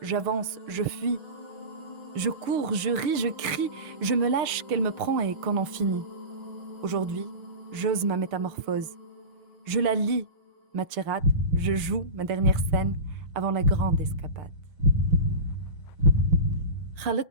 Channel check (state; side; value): late; left; 6.2 ms